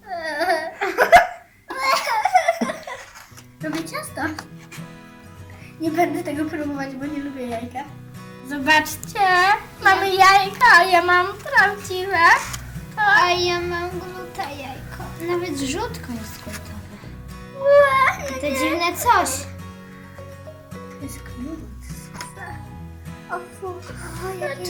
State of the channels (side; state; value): both; identical; correlation 1.00